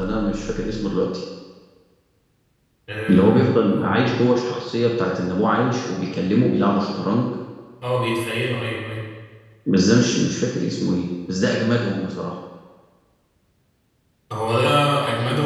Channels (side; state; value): both; identical; correlation 1.00